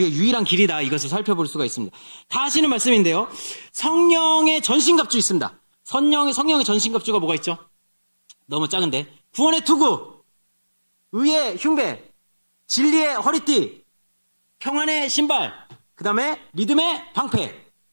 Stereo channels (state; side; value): inverted; both; correlation -1.00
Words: 유일한 길이다. 이것을 살펴볼 수가 있습니다. 다 아시는 말씀인데요. 성령의 전신갑주 있습니다. 성령의 전신갑주가 뭐가 있죠? 너무 작은데. 구원의 투구, 의의 흉배, 진리의 허리띠, 평안의 신발, 그 다음에 믿음의 방패,